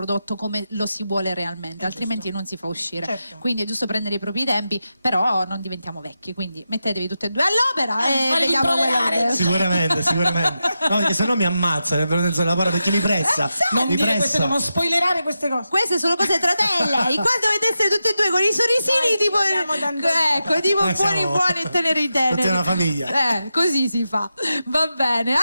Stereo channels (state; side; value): inverted; both; correlation -0.89